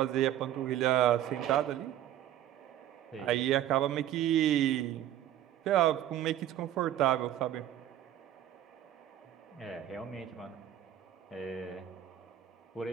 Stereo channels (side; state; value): left; quieter; 12.1 dB